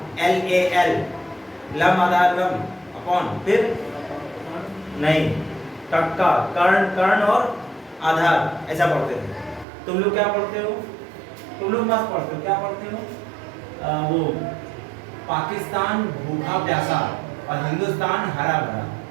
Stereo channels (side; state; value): left; drops out; at 9.7 s